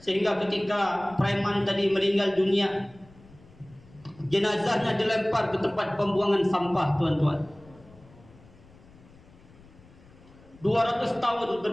Sehingga ketika preman tadi meninggal dunia, jenazahnya dilempar ke tempat pembuangan sampah, tuan-tuan. 200 tahun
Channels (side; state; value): left; noise; rumble, 25 dB below the sound